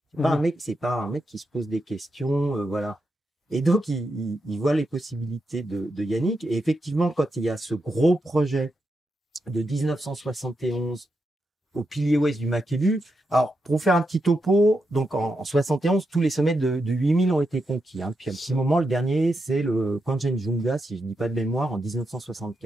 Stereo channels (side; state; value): both; normal; correlation 0.85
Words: C'est pas un mec qui se pose des questions, voilà. Et donc il voit les possibilités de Yannick. Et effectivement, quand il y a ce gros projet de 1971 au pilier ouest du Makalu. Alors, pour faire un petit topo, donc en 71, tous les sommets de 8000 ont été conquis. Puis à un petit moment, le dernier, c'est le Kanchenjunga, si je ne dis pas de mémoire, en